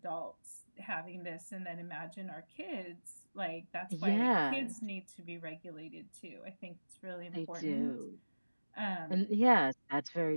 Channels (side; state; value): both; inverted; correlation -1.00